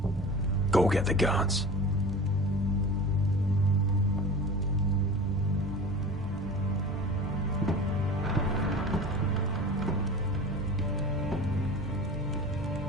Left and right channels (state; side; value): normal; both; correlation 0.36